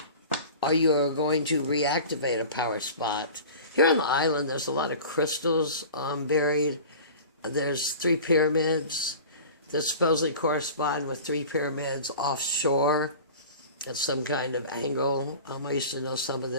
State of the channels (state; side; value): inverted; both; correlation -0.38